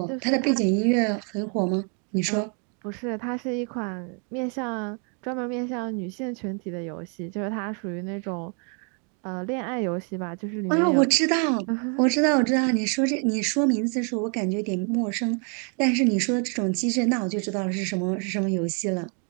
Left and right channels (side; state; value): left; quieter; 39.3 dB